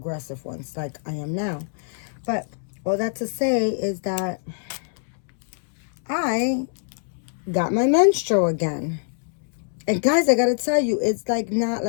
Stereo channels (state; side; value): silent; right; 62 dB below the other